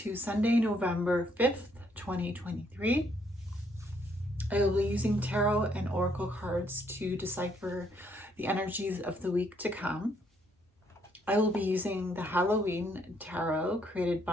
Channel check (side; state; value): both; normal; correlation 0.70